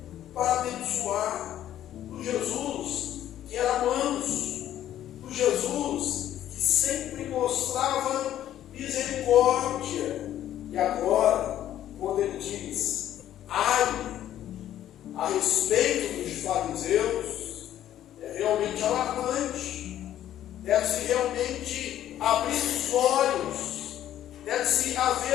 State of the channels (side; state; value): right; quieter; 11.8 dB